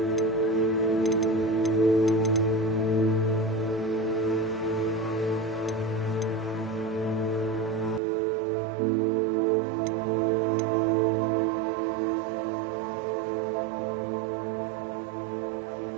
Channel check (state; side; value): drops out; left; at 8.0 s